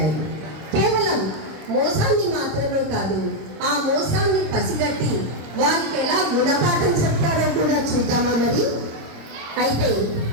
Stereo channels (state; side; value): late; left; 26 ms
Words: కేవలం మోసాన్ని మాత్రమే కాదు, ఆ మోసాన్ని పసిగట్టి వారికి ఎలా గుణపాఠం చెప్తారో కూడా చూద్దామా మరి. అయితే